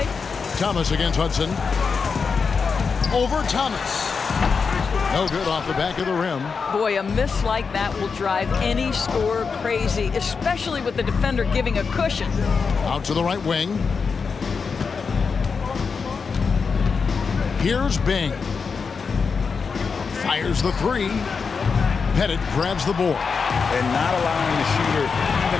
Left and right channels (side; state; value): right; quieter; 5.4 dB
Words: Thomas against Hudson. Over Thomas. No good off the back of the rim. Boy, a miss like that will drive any scorer crazy, especially with the defender giving a cushion. Out to the right wing. Here's Bing. Fires the three. Pettit grabs the board. And not allowing the shooter even